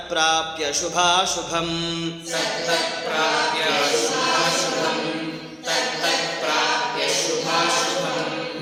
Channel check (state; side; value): identical; both; correlation 1.00